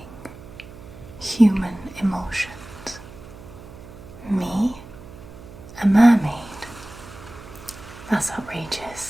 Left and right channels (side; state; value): right; noise; hum, 17 dB below the sound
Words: human emotions. Me? A mermaid? That's